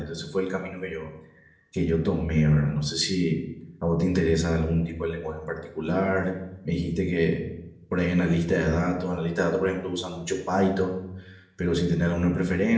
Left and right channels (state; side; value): identical; both; correlation 1.00